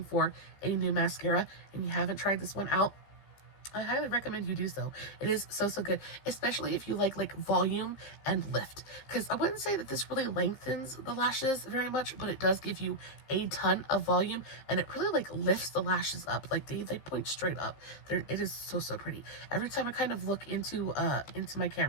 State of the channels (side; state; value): right; late; 15 ms